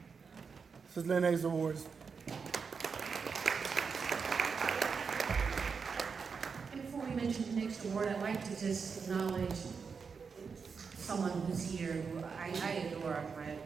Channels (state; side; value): quieter; left; 5.6 dB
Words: This is Lynn Hayes Awards. And before we mention the next award, I'd like to just acknowledge someone who's here who I adore,